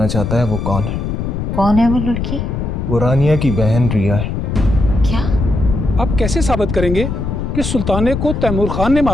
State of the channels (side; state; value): left; noise; rumble, 3 dB below the sound